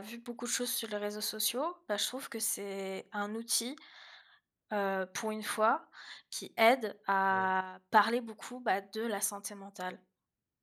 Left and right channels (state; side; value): identical; both; correlation 1.00